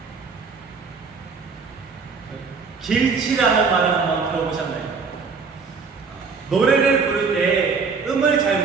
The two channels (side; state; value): left; quieter; 5.0 dB